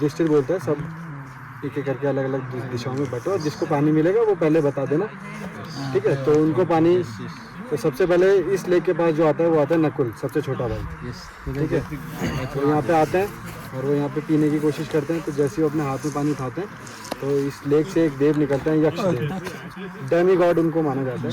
बोलता है सब एक एक करके अलग अलग दिशाओं में बटो और जिसको पानी मिलेगा वो पहले बता देना। ठीक है, तो उनको पानी, तो सबसे पहले इस लेक के पास जो आता है वो आता है नकुल, सबसे छोटा भाई। ठीक है, तो यहाँ पे आते हैं और वो यहाँ पे पीने की कोशिश करते हैं। तो जैसे वो अपने हाथ में पानी उठाते हैं तो इस लेक से एक देव निकलते हैं, यक्ष देव, डेमी गॉड उनको माना जाता है।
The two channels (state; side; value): identical; both; correlation 1.00